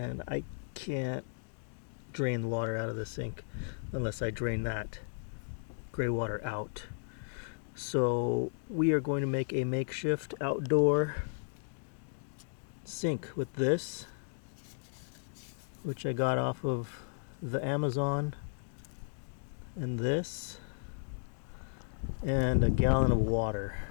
I can't drain the water out of the sink unless I drain that gray water out. So we are going to make a makeshift outdoor sink with this, which I got off of the Amazon, and this, and a gallon of water.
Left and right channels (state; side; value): silent; right; digital silence